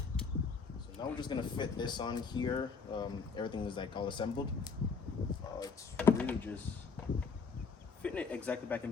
now we're just gonna fit this on here. Everything is like all assembled. It's really just fitting it exactly back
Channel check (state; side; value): quieter; right; 5.0 dB